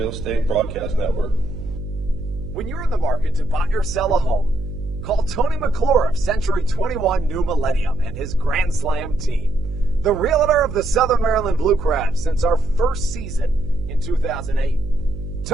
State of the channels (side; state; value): right; noise; hum, 10 dB below the sound